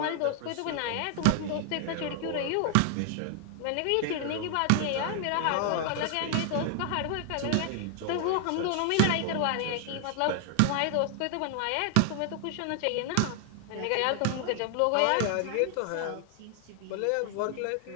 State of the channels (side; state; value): both; different; correlation 0.00